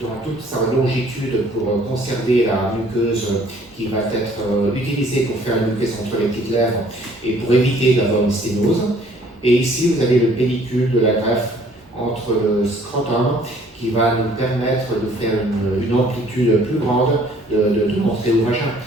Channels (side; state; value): both; normal; correlation 0.58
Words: toute sa longitude pour conserver la muqueuse qui va être utilisée pour faire la muqueuse entre les petites lèvres et pour éviter d'avoir une sténose. Et ici, vous avez le pellicule de la greffe entre le scrotum qui va nous permettre de faire une amplitude plus grande de montrer au vagin.